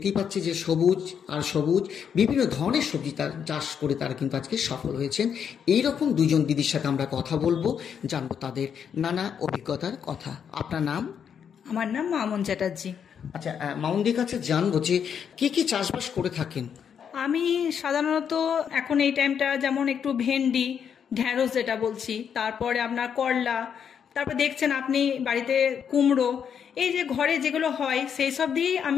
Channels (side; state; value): right; quieter; 7.7 dB